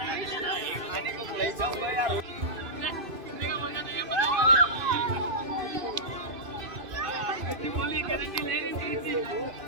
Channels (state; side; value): late; left; 2.5 ms